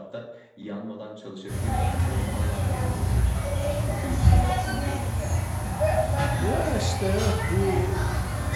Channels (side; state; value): both; identical; correlation 1.00